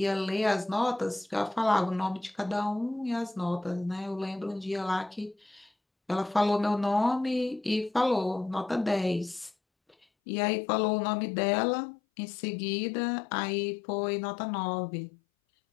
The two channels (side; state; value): right; drops out; at 10.1 s